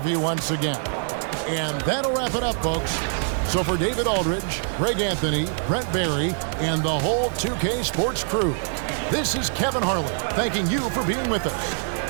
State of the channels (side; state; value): left; silent; digital silence